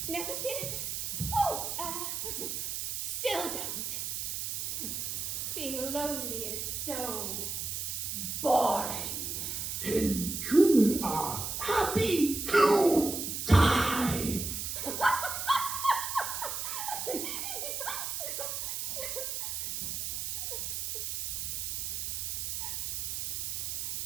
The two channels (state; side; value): noise; right; hiss, 3 dB below the sound